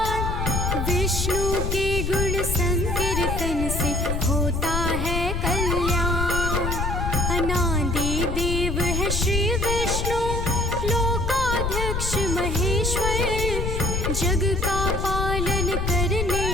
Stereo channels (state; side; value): noise; left; rumble, 1 dB below the sound